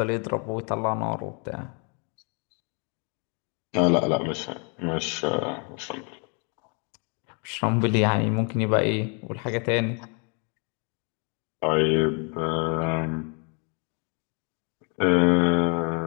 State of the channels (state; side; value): quieter; right; 36.3 dB